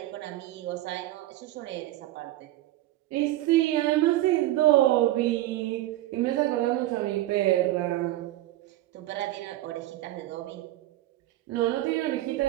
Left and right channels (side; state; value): left; quieter; 15.6 dB